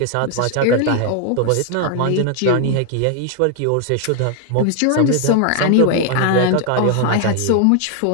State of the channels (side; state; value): both; different; correlation 0.00